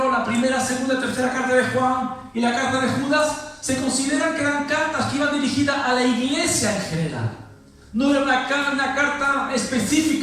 la primera, segunda y tercera carta de Juan y la carta de Judas, se consideran que eran cartas que iban dirigidas a la iglesia en general. No era una carta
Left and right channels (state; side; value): identical; both; correlation 1.00